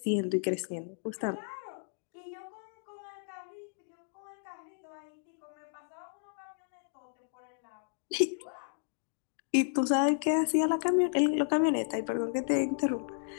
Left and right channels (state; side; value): silent; right; digital silence